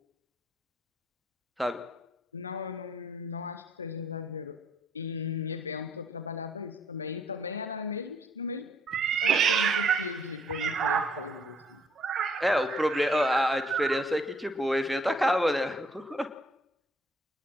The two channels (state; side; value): normal; both; correlation 0.64